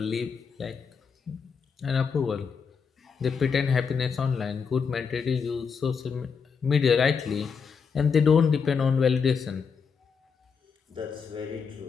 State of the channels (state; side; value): quieter; right; 6.0 dB